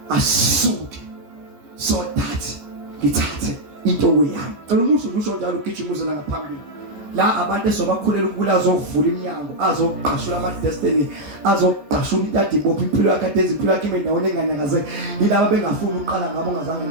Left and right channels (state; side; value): late; left; 14 ms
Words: asuke so that ngithathe into yami. Umuntu usho njalo ugijimuse la ngaphambili. La abantu esobakhulela ukula azovula iminyango, azoqashula ama destiny, azoqashula intadi bophi impilo yakhe adenza impilo yakhe endaweni enganyakaze. Yilabo bengafuni ukuqala ngabo ngazange